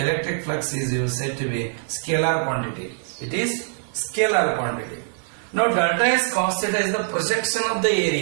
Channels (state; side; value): silent; left; 63 dB below the other